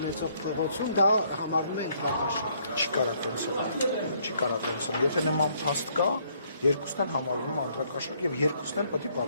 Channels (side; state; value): both; inverted; correlation -0.67